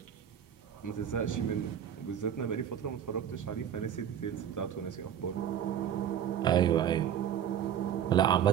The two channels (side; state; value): left; quieter; 9.4 dB